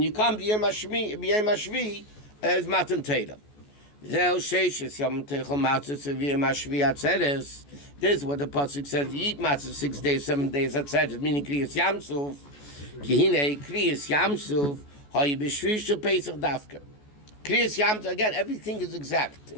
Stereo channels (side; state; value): right; late; 14 ms